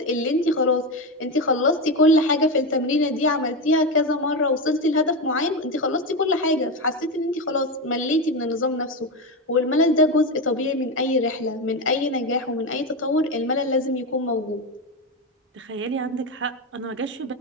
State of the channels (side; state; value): both; normal; correlation 0.15